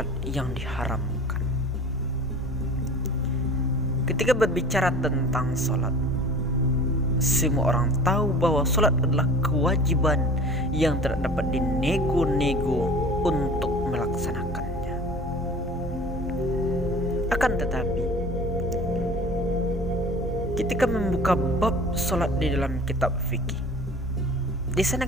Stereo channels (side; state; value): both; normal; correlation 0.42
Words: yang diharamkan. Ketika berbicara tentang sholat, semua orang tahu bahwa sholat adalah kewajiban yang tidak dapat dinego-nego untuk melaksanakannya. Akan tetapi, ketika membuka bab sholat di dalam kitab fikih, di